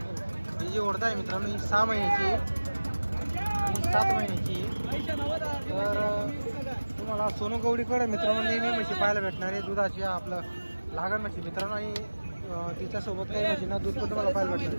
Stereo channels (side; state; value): both; inverted; correlation -1.00